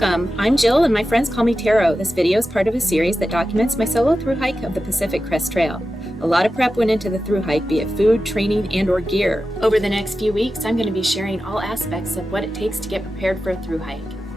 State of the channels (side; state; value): both; normal; correlation 0.92